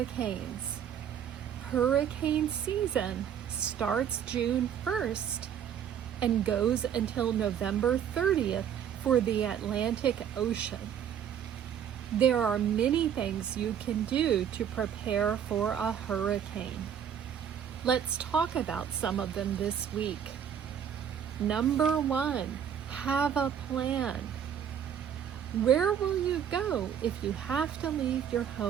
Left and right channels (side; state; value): left; quieter; 8.7 dB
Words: Hurricane season starts June 1st and goes until November 30th for the Atlantic Ocean. There are many things you can do to prepare for a hurricane. Let's talk about some of them this week. Number 1, have a plan. Where will you go if you have to leave your